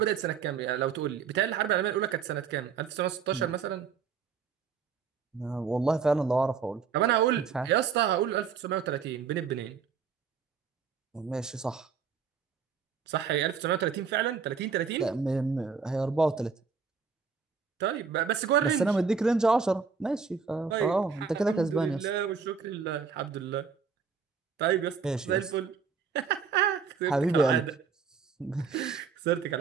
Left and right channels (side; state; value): left; quieter; 5.9 dB